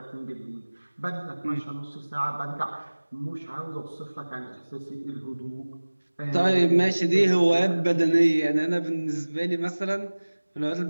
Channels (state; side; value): inverted; both; correlation -1.00